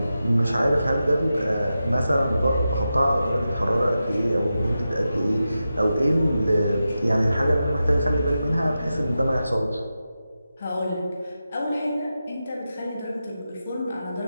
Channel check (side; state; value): both; inverted; correlation -0.91